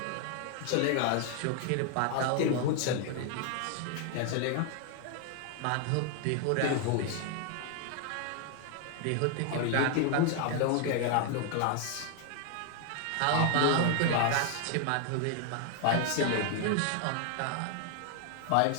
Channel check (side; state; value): both; different; correlation 0.00